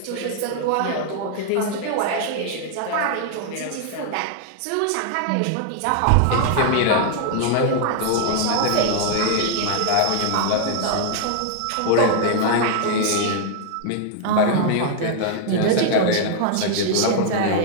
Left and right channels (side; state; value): both; different; correlation 0.00